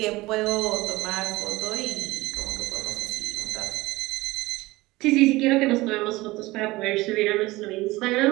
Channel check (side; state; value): left; quieter; 20.1 dB